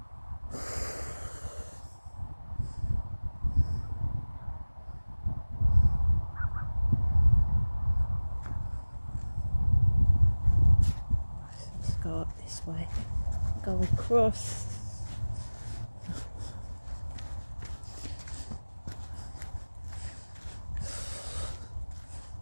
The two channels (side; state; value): both; inverted; correlation -1.00